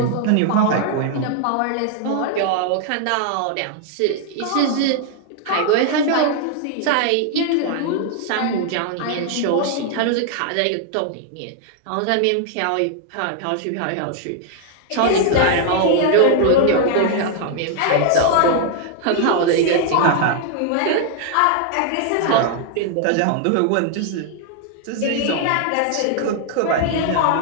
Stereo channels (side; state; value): both; different; correlation 0.00